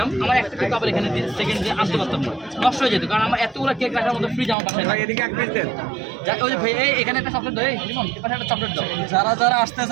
আমার একটা কেক আবার এখানে সেকেন্ড দিয়ে আনতে পারতাম না, নষ্ট হয়ে যেত। কারণ আমার এতগুলো কেক রাখার মতো ফ্রিজ আমার বাসায় ওই যে ভাই এখানে একটা চকলেট দাও, লিমন এখানে একটা চকলেট দাও। যারা যারা আসতে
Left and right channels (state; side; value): drops out; left; at 4.5 s